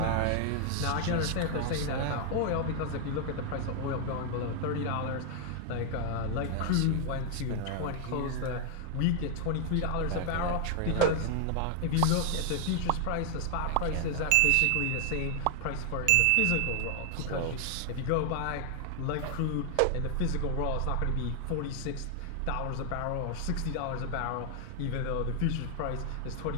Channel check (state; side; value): different; both; correlation 0.00